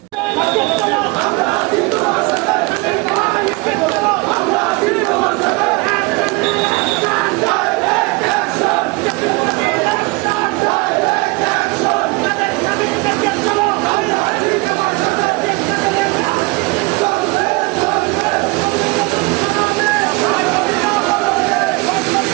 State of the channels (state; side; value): quieter; left; 26.1 dB